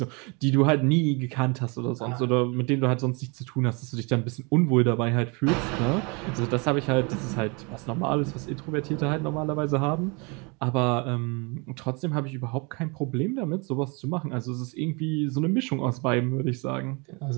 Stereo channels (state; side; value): quieter; left; 30.7 dB